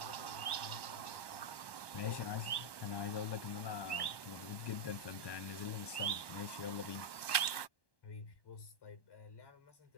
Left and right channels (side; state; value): right; late; 1.1 ms